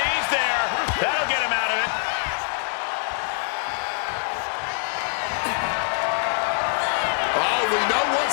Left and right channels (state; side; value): silent; right; 60 dB below the other